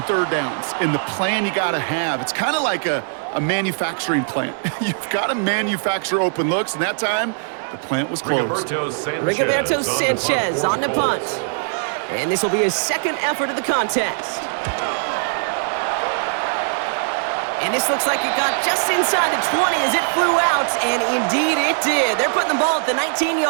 3rd downs and the plan you got to have. It's kind of like a manufacturing plant. You've got to manufacture open looks, and that time the plant was closed. Rigoberto Sanchez on the punt. And this will be his 2nd effort of the contest. And this looks like it got just inside the 20 as it flew out, and indeed it did. They're putting the ball at the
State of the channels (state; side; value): silent; left; digital silence